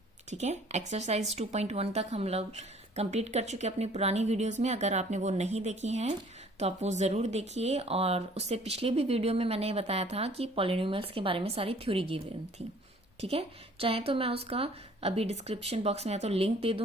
ठीक है, एक्सरसाइज 2.1 तक हम लोग कंप्लीट कर चुके अपनी पुरानी वीडियोस में। अगर आपने वो नहीं देखी हैं तो आप वो ज़रूर देखिए। और उससे पिछले भी वीडियो में मैंने बताया था कि पॉलिनोमियल्स के बारे में सारी थ्योरी गिवन थी। ठीक है, चाहे तो मैं उसका अभी डिस्क्रिप्शन बॉक्स में या तो लिंक दे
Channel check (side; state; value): both; normal; correlation 0.55